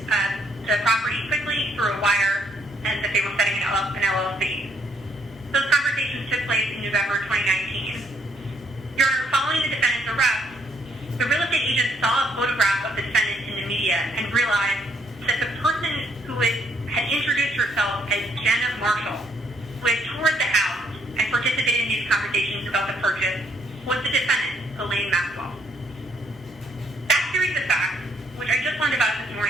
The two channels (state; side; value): normal; both; correlation 0.69